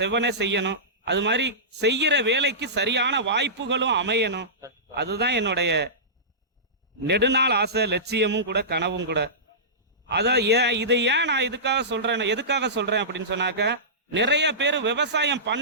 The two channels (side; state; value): both; normal; correlation -0.20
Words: செய்யணும். அது மாதிரி செய்யற வேலைக்கு சரியான வாய்ப்புகளும் அமையணும். அதுதான் என்னுடைய நெடுநாள் ஆசை, லட்சியமும் கூட, கனவும் கூட. அதான் இதை ஏன் நான் எதுக்காக சொல்றேன் அப்படின்னு சொன்னாக்க, நிறைய பேர் விவசாயம்